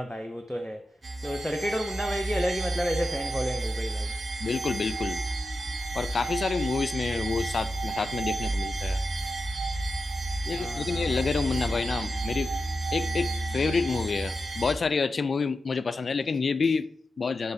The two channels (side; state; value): both; normal; correlation 0.90